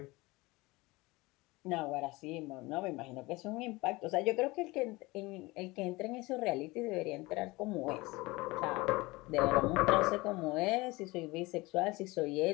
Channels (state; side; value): quieter; right; 22.2 dB